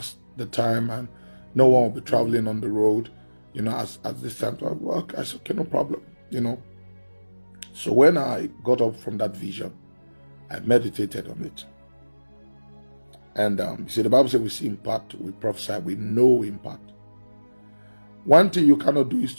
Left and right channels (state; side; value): inverted; both; correlation -1.00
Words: the time and no one will be traveling on the road, at this time. So I said, okay, no problem, So when I got up from that vision, I meditated on it. And you see, the Bible says we see in part, we prophesy, we know in part. One thing you cannot do is